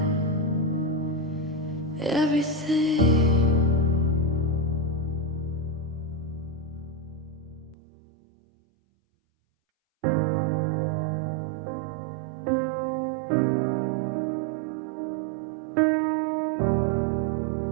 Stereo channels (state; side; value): drops out; left; at 7.8 s